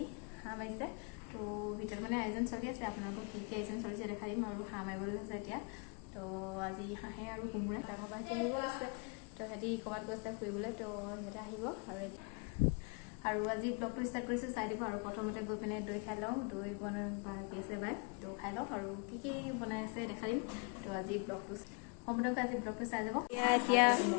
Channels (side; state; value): right; quieter; 33.9 dB